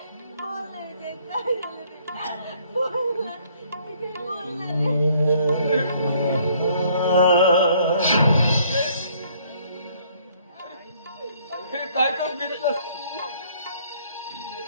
हे काय कर घेतलं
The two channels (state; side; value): inverted; both; correlation -0.62